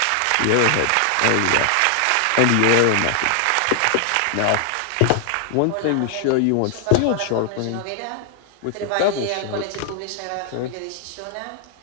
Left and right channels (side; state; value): both; different; correlation 0.00